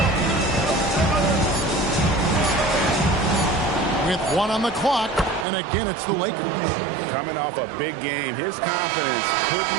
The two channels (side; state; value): left; drops out; at 5.5 s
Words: With 1 on the clock, and again it's the Lakers. Coming off a big game, his confidence couldn't